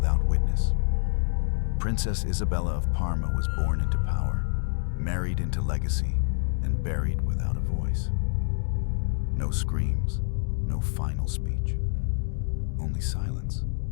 witness. Princess Isabella of Parma was born into power, married into legacy, and buried without a voice. No screams, no final speech, only silence,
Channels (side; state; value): right; silent; digital silence